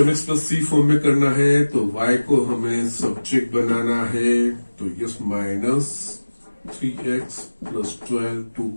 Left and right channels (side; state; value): both; inverted; correlation -1.00